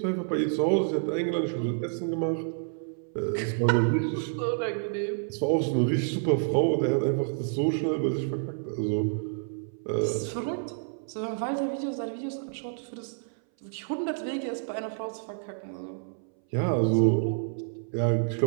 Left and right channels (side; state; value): left; silent; 59 dB below the other